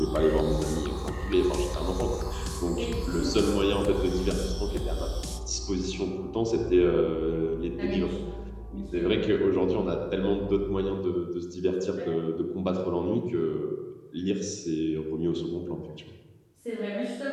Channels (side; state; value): both; identical; correlation 1.00